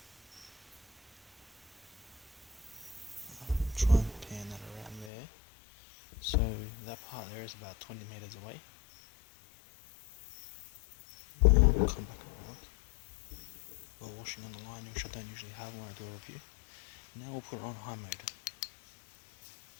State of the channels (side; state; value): right; drops out; at 5.1 s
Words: Try and pan that around there. So that part there is about 20 meters away. We'll come back around. We're washing on the line, which I don't usually have when I do a review. Now we'll put it on high mode.